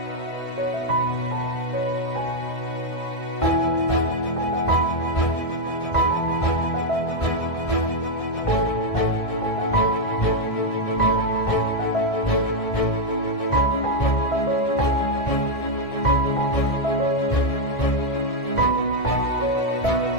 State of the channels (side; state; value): right; late; 1.6 ms